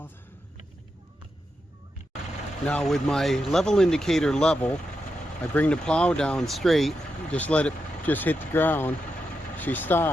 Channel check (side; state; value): both; normal; correlation 0.86